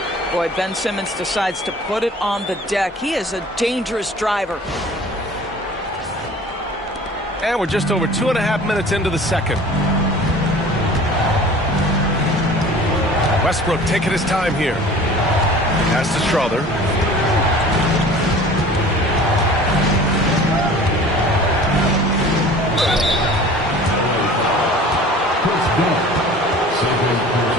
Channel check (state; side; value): normal; both; correlation 0.44